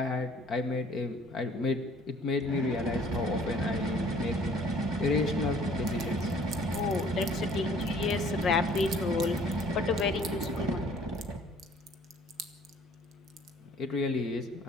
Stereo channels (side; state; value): both; normal; correlation 0.55